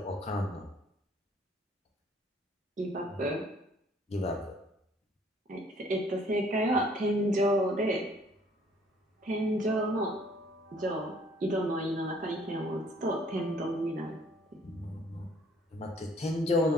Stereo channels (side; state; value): both; normal; correlation 0.59